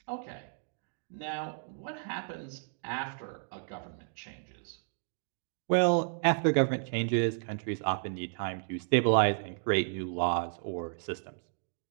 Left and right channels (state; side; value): silent; left; digital silence